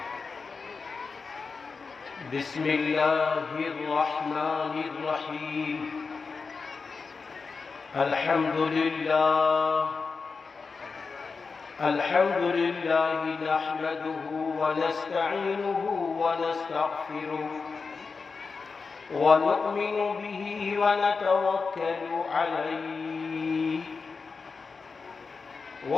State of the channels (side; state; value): right; quieter; 4.7 dB